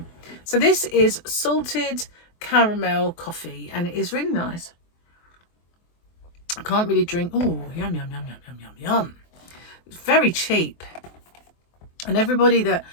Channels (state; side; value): late; right; 24 ms